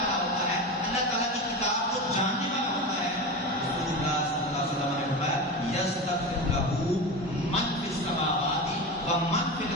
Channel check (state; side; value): normal; both; correlation 0.24